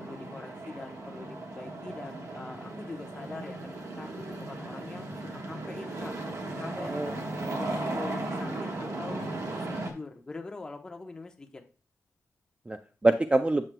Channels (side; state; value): both; normal; correlation 0.90